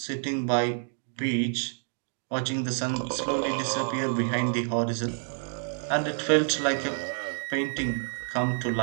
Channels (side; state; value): left; silent; 59 dB below the other